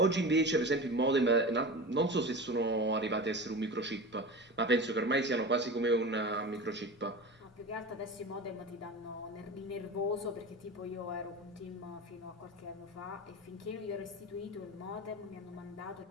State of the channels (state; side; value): normal; both; correlation 0.30